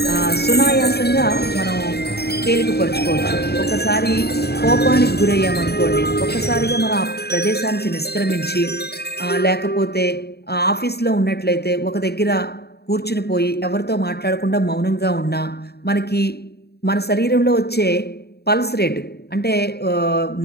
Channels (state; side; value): late; right; 0.47 ms